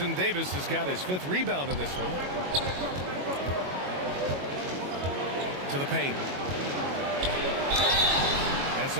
Davis has got his 5th rebound in this one. To the paint. And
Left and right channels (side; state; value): left; late; 22 ms